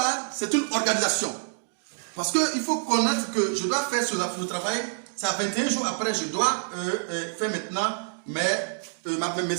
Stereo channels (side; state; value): left; silent; digital silence